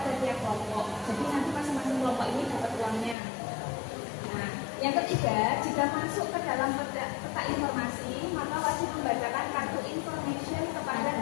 tiap kelompok. Jadi nanti masing-masing kelompok ini dapat uangnya. Nah, yang ketiga, jika masuk ke dalam peta informasi, maka wajib membacakan kartu information kepada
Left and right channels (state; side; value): drops out; right; at 3.2 s